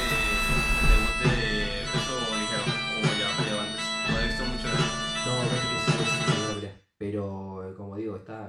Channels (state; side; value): identical; both; correlation 1.00